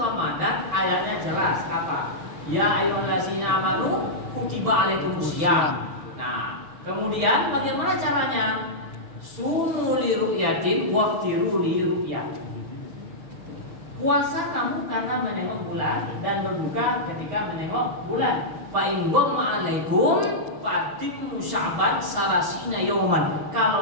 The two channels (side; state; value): left; late; 6.0 ms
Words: ayatnya jelas apa? Ya ayyuhallazina amanu kutiba alaikumusiyam. Nah, kemudian bagaimana caranya? Sumu li ru'yatin waftiru li ru'yat. Puasa kamu karena menengok bulan dan berbuka ketika menengok bulan. Fa in ghamma alaikum fatimmu sya'ban salasina yauman.